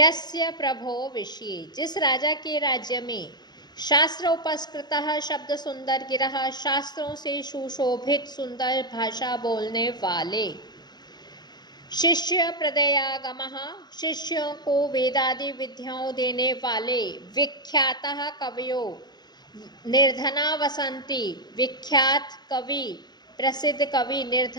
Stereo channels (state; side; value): late; right; 0.20 ms